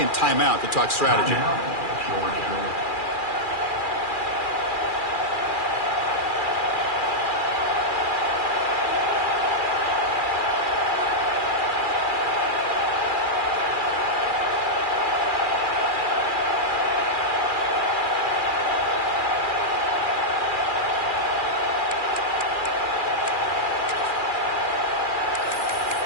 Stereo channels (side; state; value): right; late; 2.4 ms